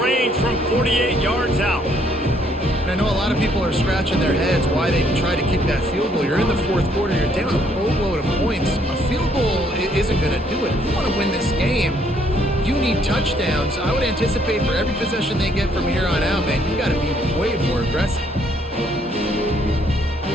from 48 yards out. And I know a lot of people are scratching their heads why they try to kick that field goal. You're in the 4th quarter. You're down a boatload of points. A field goal isn't going to do it. If you want to win this game, you need touchdowns. I would anticipate for every possession they get from here on out, man, you got to be way more aggressive.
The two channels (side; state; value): both; normal; correlation 0.67